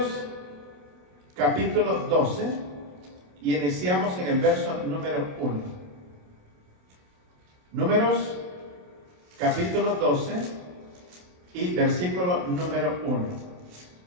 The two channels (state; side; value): late; left; 28 ms